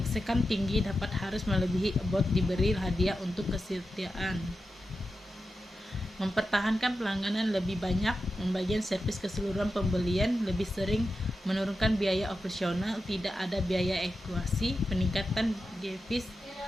tinggi dapat harus melebihi about diberi hadiah untuk kesetiaan. Mempertahankan pelangganan lebih banyak, membagian servis keseluruhan pembelian, lebih sering menurunkan biaya operasional, tidak ada biaya ekuasi, peningkatan devis.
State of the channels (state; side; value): normal; both; correlation 0.91